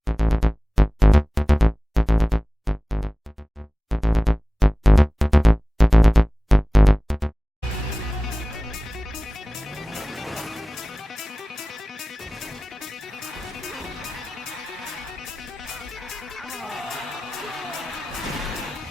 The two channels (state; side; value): normal; both; correlation 0.98